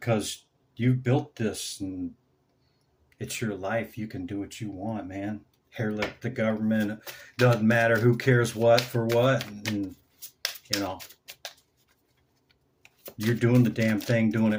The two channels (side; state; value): both; identical; correlation 1.00